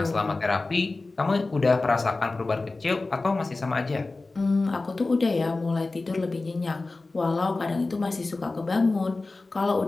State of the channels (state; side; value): quieter; right; 3.4 dB